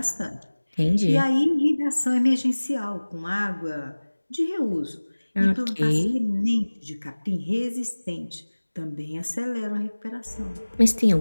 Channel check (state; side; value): inverted; both; correlation -1.00